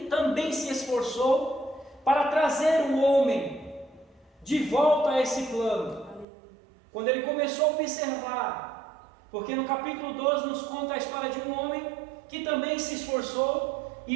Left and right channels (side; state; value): left; drops out; at 6.2 s